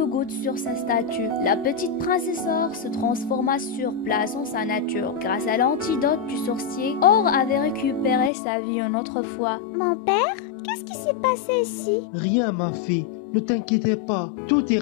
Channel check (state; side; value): drops out; right; at 8.3 s